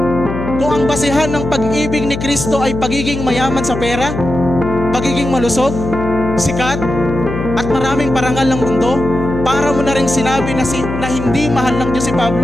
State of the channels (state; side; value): noise; left; hum, 6 dB below the sound